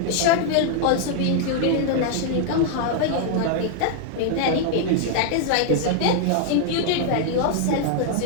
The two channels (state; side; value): different; both; correlation 0.00